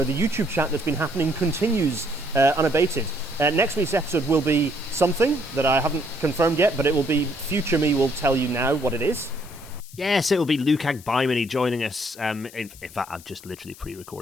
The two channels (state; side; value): noise; left; hiss, 20 dB below the sound